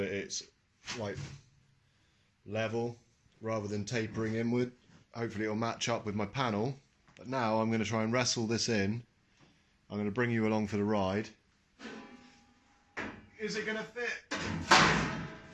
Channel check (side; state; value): both; identical; correlation 1.00